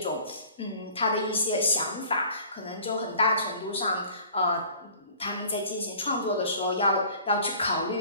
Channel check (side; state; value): both; inverted; correlation -0.49